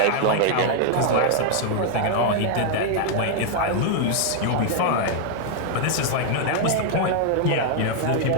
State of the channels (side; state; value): both; different; correlation 0.00